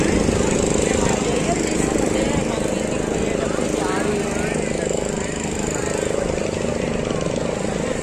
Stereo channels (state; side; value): identical; both; correlation 1.00